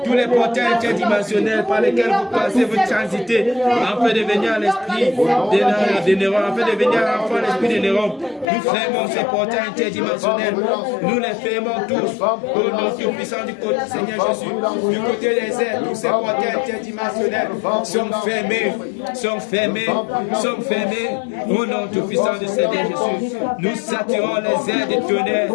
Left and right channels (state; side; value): drops out; right; at 8.5 s